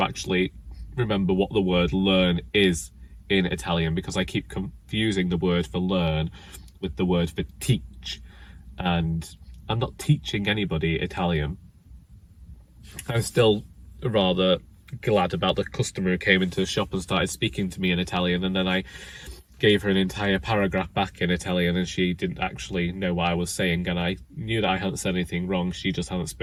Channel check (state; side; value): identical; both; correlation 1.00